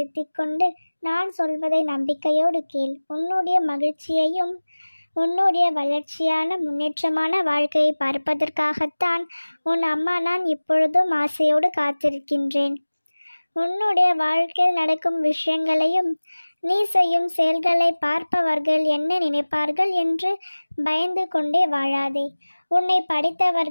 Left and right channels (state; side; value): inverted; both; correlation -1.00